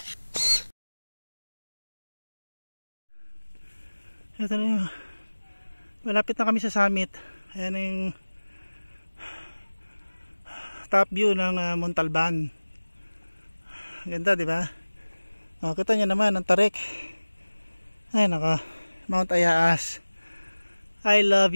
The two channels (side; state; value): both; inverted; correlation -1.00